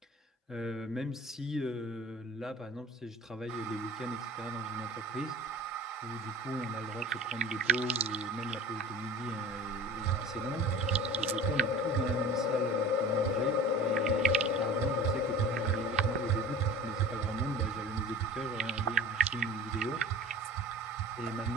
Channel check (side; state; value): both; normal; correlation 0.39